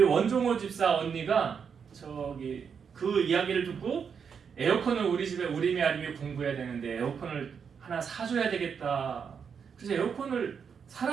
원종호 집사 언니가 저기 그 이야기를 듣고 에어컨을 우리 집에 우리미 아리미 공부해야 되는데 에어컨을 하나 사줘야 되겠다. 그래서 에어컨을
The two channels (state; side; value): quieter; left; 6.7 dB